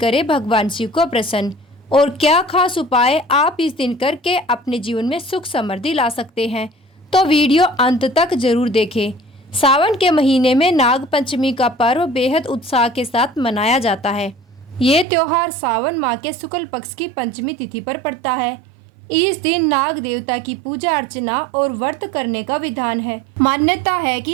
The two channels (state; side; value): drops out; left; at 15.1 s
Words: भगवान शिव को प्रसन्न और क्या खास उपाय आप इस दिन करके अपने जीवन में सुख समृद्धि ला सकते हैं। तो वीडियो अंत तक जरूर देखें। सावन के महीने में नाग पंचमी का पर्व बेहद उत्साह के साथ मनाया जाता है। ये त्योहार सावन माह के शुक्ल पक्ष की पंचमी तिथि पर पड़ता है। इस दिन नाग देवता की पूजा अर्चना और व्रत करने का विधान है। मान्यता है